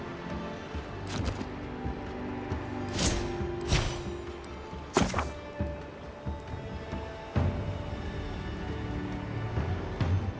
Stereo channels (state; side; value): identical; both; correlation 1.00